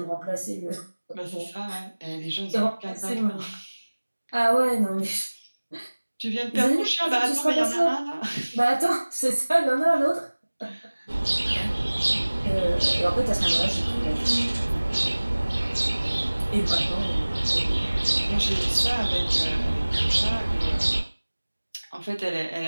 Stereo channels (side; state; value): both; inverted; correlation -1.00